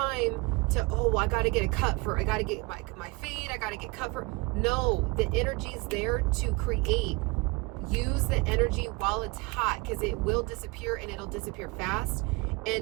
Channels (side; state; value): left; quieter; 25.7 dB